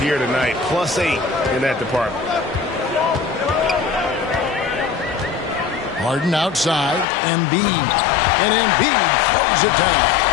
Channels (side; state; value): right; drops out; at 7.1 s